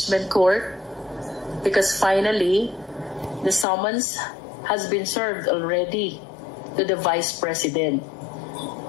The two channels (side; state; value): right; drops out; at 3.7 s